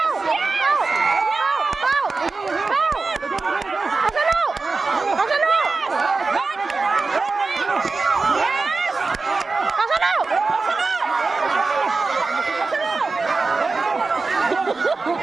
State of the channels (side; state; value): left; quieter; 4.0 dB